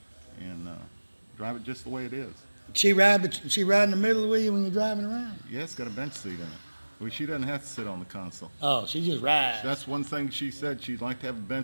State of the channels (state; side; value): inverted; both; correlation -1.00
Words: drive it just the way it is. She ride in the middle with you when you're driving around? Yeah, it's got a bench seat in it. Well, she doesn't have to sit on the console. Oh, she just rides. That's one thing she said. She'd like to have a